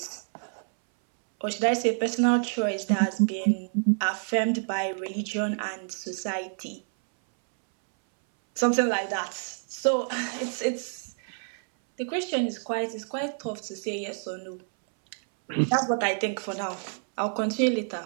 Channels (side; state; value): left; silent; 59 dB below the other